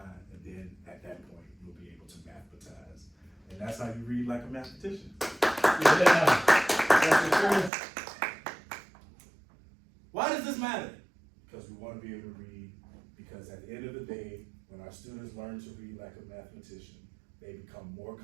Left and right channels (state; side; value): drops out; left; at 7.7 s